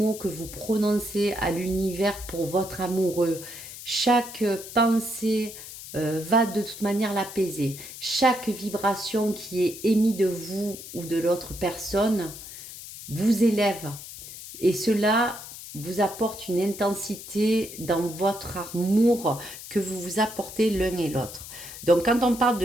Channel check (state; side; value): noise; left; hiss, 13 dB below the sound